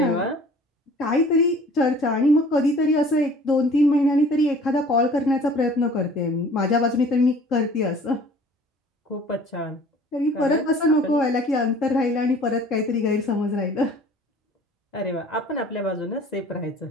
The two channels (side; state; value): both; normal; correlation 0.49